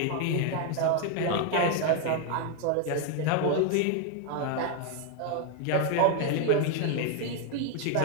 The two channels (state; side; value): different; both; correlation 0.01